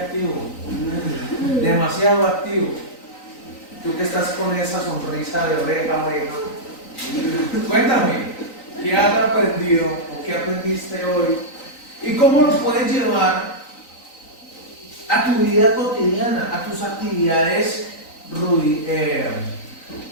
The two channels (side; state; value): right; late; 3.9 ms